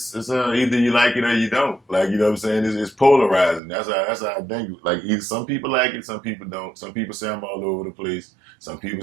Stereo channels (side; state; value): left; drops out; at 3.6 s